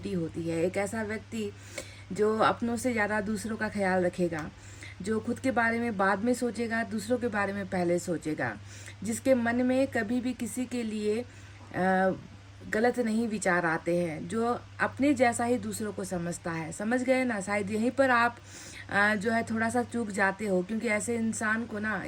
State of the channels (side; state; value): both; identical; correlation 1.00